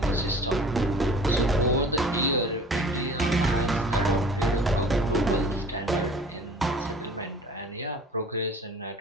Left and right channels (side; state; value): both; normal; correlation 0.47